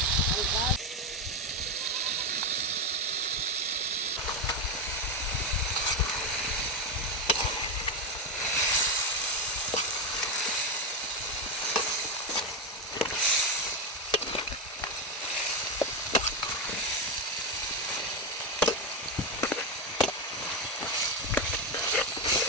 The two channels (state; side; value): normal; both; correlation 0.10